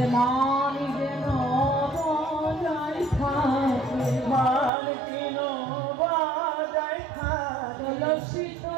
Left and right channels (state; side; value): drops out; left; at 4.7 s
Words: মান যেন বজায় থাকে, মান যেন বজায় থাকে। তুলসী